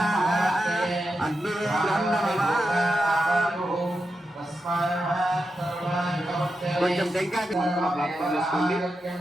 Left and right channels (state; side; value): normal; both; correlation 0.88